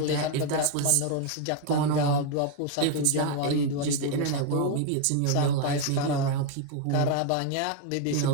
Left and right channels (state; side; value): different; both; correlation 0.01